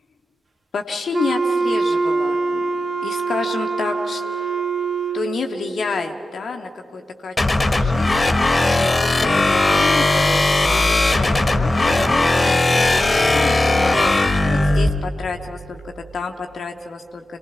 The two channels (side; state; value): both; normal; correlation 0.93